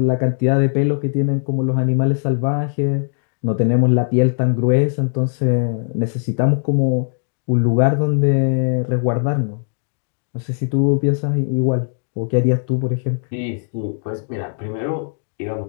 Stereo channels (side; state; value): right; silent; 66 dB below the other